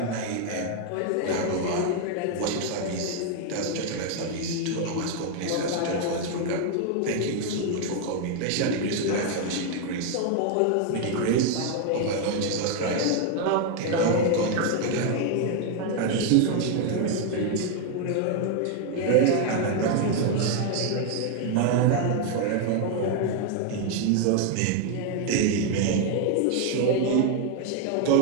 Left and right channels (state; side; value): different; both; correlation 0.01